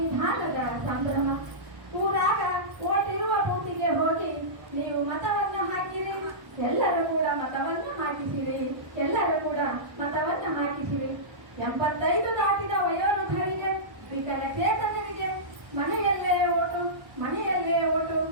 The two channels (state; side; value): late; left; 1.2 ms